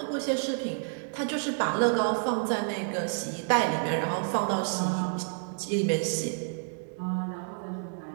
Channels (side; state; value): left; silent; 58 dB below the other